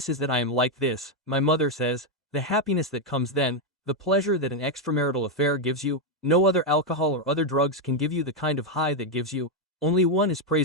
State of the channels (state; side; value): normal; both; correlation 0.03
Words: is that I am like this, my mother says, the happiness that comes then, the pleasure that an extramarital affair gives you, no other alcohol or other drugs can give you the kind of high that gives you, only one is